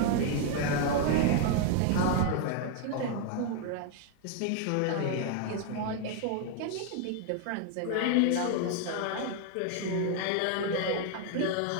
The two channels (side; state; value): both; different; correlation 0.00